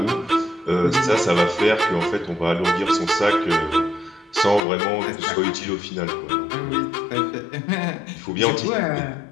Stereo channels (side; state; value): right; drops out; at 4.6 s